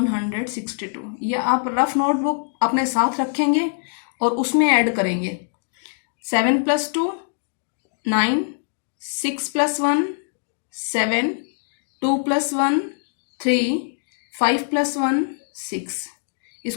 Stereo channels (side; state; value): right; silent; 61 dB below the other